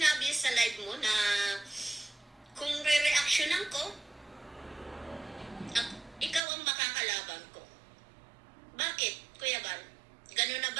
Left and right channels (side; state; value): left; drops out; at 6.5 s